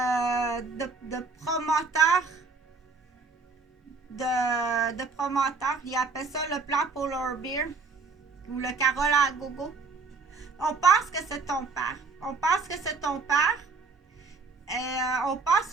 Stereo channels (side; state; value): left; quieter; 4.5 dB